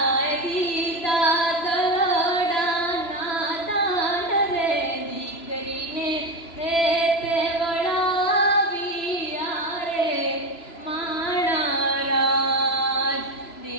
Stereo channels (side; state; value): right; late; 3.0 ms